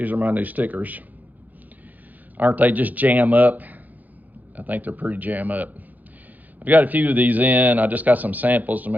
are my new stickers. Aren't they just jam up? I think they're pretty jam up. I've got a few of these in. I just got some samples to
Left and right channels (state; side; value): late; left; 0.082 ms